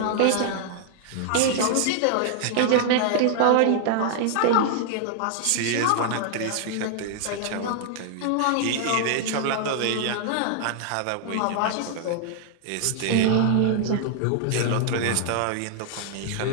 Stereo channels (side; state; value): both; different; correlation 0.00